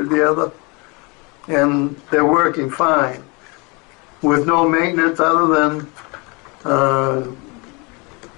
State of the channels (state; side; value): quieter; right; 29.0 dB